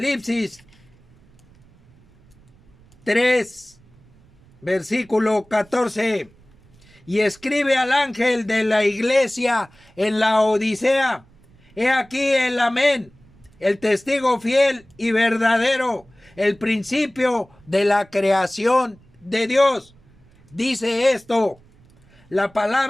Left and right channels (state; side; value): noise; right; rumble, 29 dB below the sound